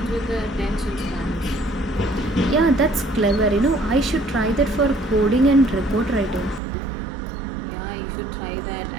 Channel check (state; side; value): drops out; left; at 6.6 s